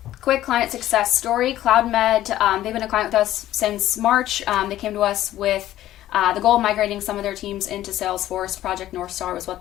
quick client success story. CloudMed, they've been a client with us since March. They came to us with the goal of migrating some of their teams into Salesforce. Project North Star was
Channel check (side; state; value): right; quieter; 13.6 dB